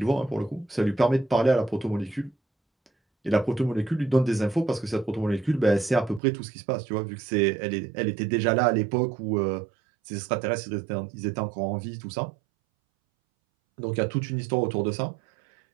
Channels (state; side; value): drops out; left; at 6.2 s